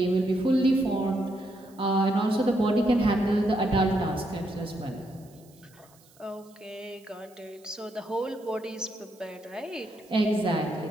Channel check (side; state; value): right; noise; hiss, 28 dB below the sound